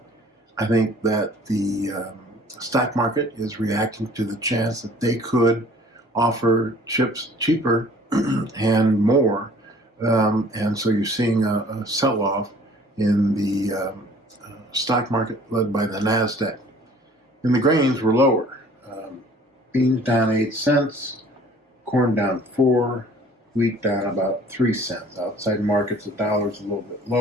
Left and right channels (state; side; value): normal; both; correlation 0.52